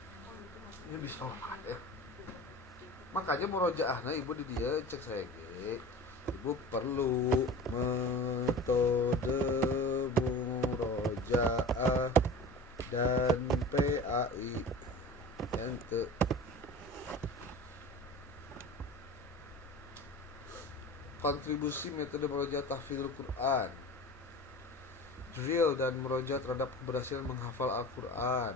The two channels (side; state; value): both; normal; correlation 0.36